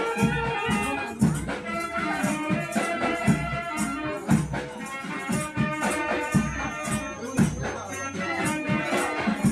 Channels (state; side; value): identical; both; correlation 1.00